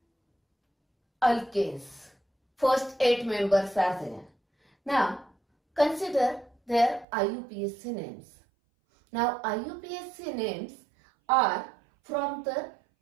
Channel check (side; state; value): left; drops out; at 7.1 s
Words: alkanes. First 8 members are there. Now consider their IUPAC names. Now IUPAC names are from the